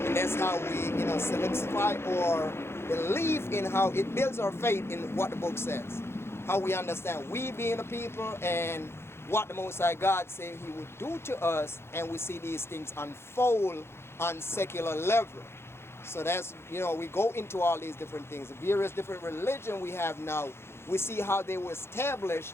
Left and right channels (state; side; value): late; right; 0.12 ms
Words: And that's how we, you know, solidify or believe in how it builds our faith in what the book says. How we understand we being the people and what the Most High God said he would do to us, and we see these things unfold on secular level. So that's, you know, we go into all these different things. The various different religion we have now, we see how they were established,